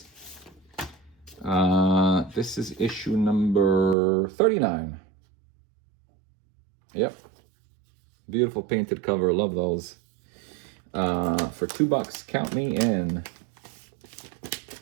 This is issue number 39. Yep. Beautiful painted cover. Love those. For $2. Count me in.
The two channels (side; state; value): left; drops out; at 4.0 s